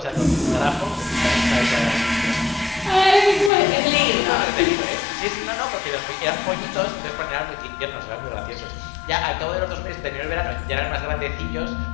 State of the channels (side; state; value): right; drops out; at 3.5 s